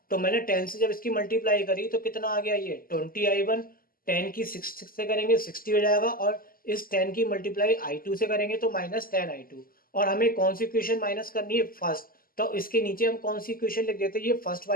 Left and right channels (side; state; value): right; late; 0.42 ms